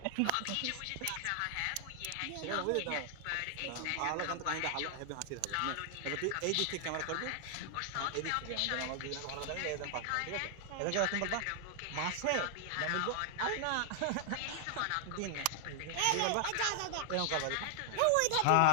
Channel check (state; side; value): different; both; correlation 0.00